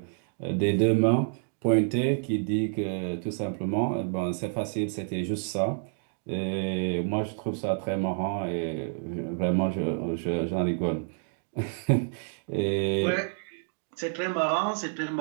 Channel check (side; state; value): left; silent; 59 dB below the other